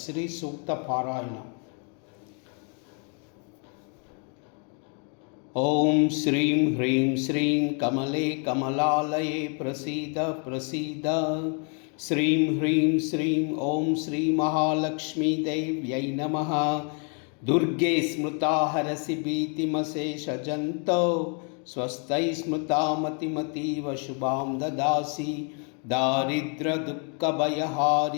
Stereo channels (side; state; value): right; quieter; 40.0 dB